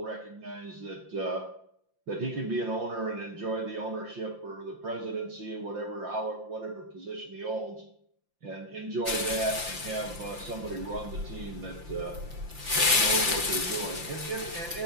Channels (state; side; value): late; left; 5.8 ms